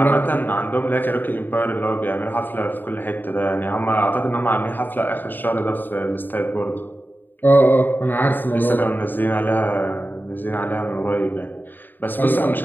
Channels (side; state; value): right; late; 0.091 ms